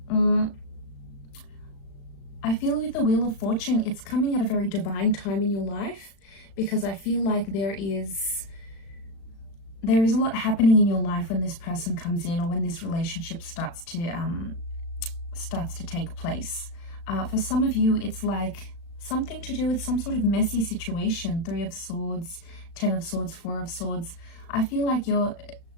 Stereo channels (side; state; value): right; late; 35 ms